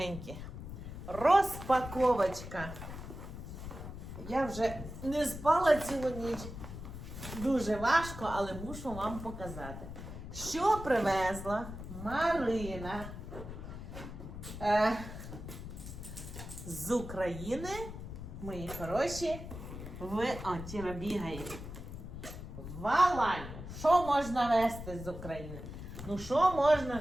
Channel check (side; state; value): left; noise; rumble, 10 dB below the sound